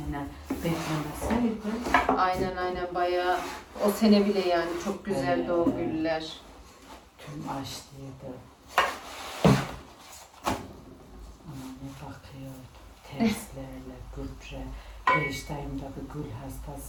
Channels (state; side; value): identical; both; correlation 1.00